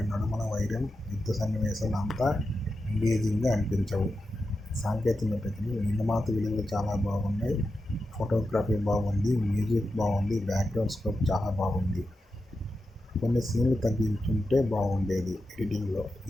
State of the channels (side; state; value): both; normal; correlation 0.90